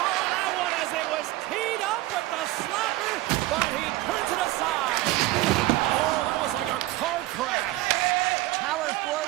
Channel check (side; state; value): left; quieter; 17.8 dB